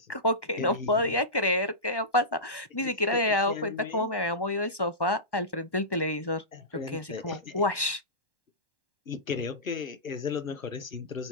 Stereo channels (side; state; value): right; late; 1.1 ms